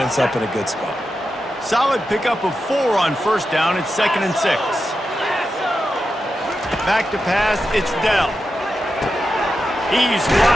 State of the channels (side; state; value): both; normal; correlation 0.89